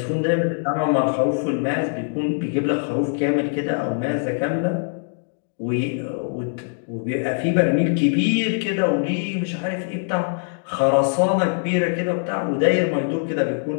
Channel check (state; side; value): silent; right; digital silence